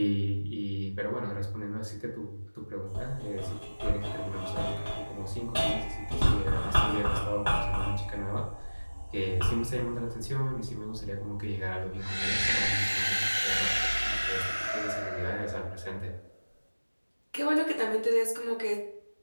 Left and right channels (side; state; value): both; inverted; correlation -1.00